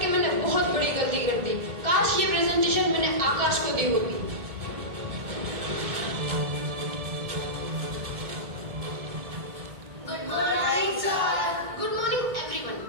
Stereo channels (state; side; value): late; left; 1.7 ms